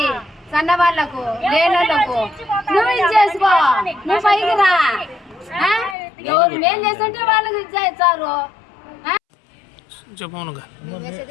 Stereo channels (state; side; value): drops out; right; at 6.0 s